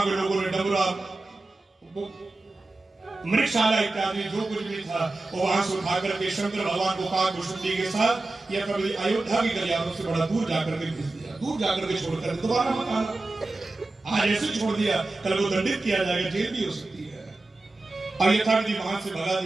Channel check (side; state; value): left; quieter; 3.1 dB